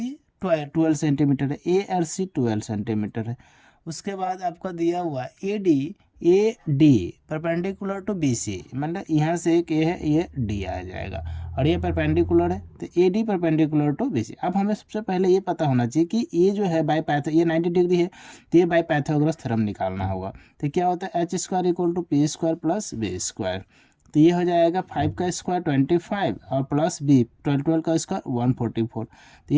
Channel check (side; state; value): both; identical; correlation 1.00